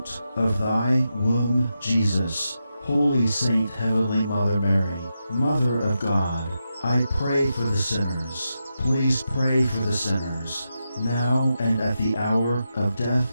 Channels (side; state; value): both; inverted; correlation -0.88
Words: of thy womb, Jesus. Holy Saint Heavenly Mother Mary, Mother of God, I pray for the sinners. Please pray for the sinners, now and at the hour of